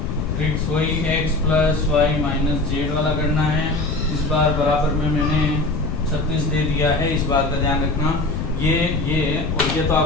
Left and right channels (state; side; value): noise; left; rumble, 4 dB below the sound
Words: ट्रिक्स वही x + y - z वाला करना है। इस बार बराबर में मैंने 36 दे दिया है, इस बात का ध्यान रखना। ये और ये तो